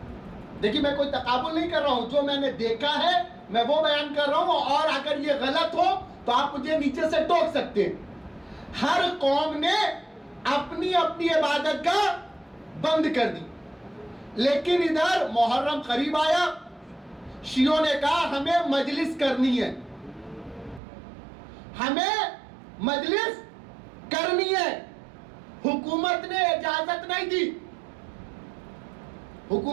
دیکھیے, میں کوئی تقابل نہیں کر رہا ہوں, جو میں نے دیکھا ہے میں وہ بیان کر رہا ہوں, اور اگر یہ غلط ہو تو آپ مجھے نیچے سے ٹوک سکتے ہیں. ہر قوم نے اپنی اپنی عبادت گاہ بند کر دی. لیکن ادھر محرم قریب آیا, شیعوں نے کہا ہمیں مجلس کرنی ہے, ہمیں مجلس کرنی ہے. حکومت نے اجازت نہیں دی.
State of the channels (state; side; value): drops out; left; at 20.8 s